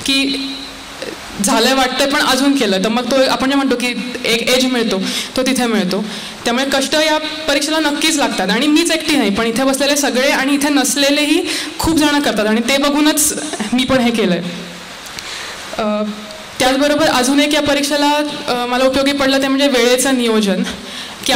की झालंय वाटतंय पण अजून केलं तर मग तो आपण जे म्हणतो की एक एज मिळतो तो तिथे मिळतो. त्यामुळे कष्ट या परीक्षेला नक्कीच लागतात. आणि मीच एकटी नाही, पण इथे बसलेले सगळे आणि इथे नसलेलेही खूप जण करतात आणि ते बघूनच मी पण हे केलं आहे. त्याचबरोबर अजून एक या परीक्षेला मला उपयोगी पडलं ते म्हणजे वेळेचं नियोजन. की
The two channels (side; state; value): both; identical; correlation 1.00